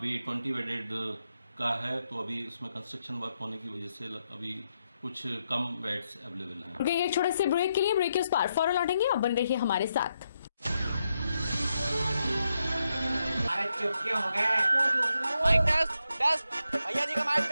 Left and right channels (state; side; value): inverted; both; correlation -0.83